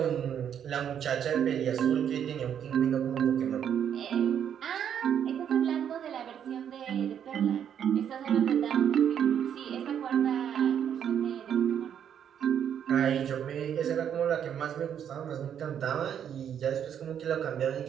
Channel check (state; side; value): quieter; left; 8.9 dB